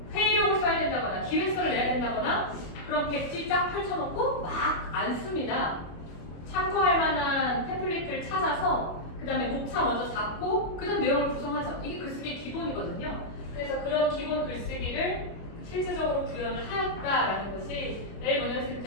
회의록을 써야 된다거나 기획서를 내야 된다거나 그럼 백지 쫙 펼쳐놓고 막 안 씁니다. 참고할 만한 템플릿을 찾아서 그 다음에 목차 먼저 잡고 그 다음 내용을 구성하죠. 이게 글쓰기의 기본이거든요. 그래서 그런 기본 글쓰기를 실질적으로 구현을 하였다라는 것이 내일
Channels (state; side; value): late; right; 25 ms